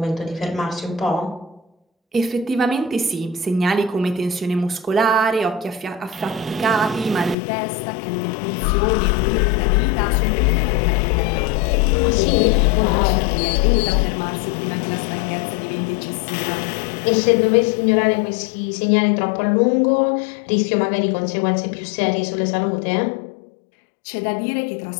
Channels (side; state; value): right; drops out; at 7.4 s